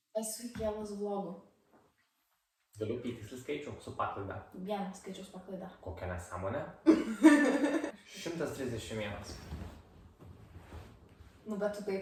esu įkėlus vlogų? Galiu įtiksliai skaičių su paklaida. Vienas skaičius paklaida. Kokia nesąmonė? 131. Nu, bet tu tai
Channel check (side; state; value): both; identical; correlation 1.00